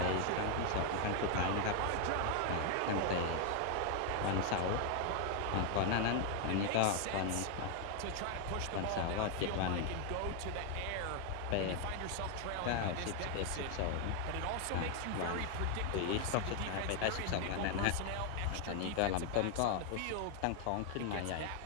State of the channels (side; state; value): both; different; correlation 0.00